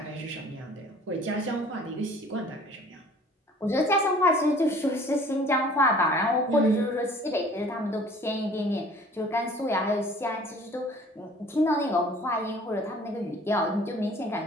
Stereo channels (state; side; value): normal; both; correlation 0.51